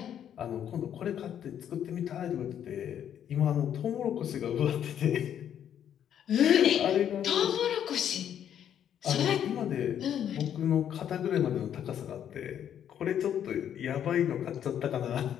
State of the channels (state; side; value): quieter; right; 9.6 dB